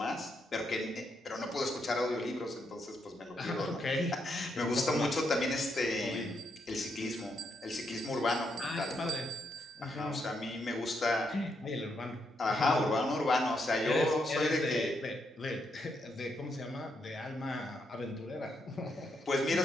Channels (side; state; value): both; normal; correlation 0.79